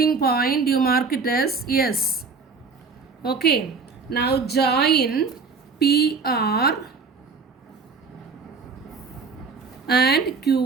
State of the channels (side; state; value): left; quieter; 4.7 dB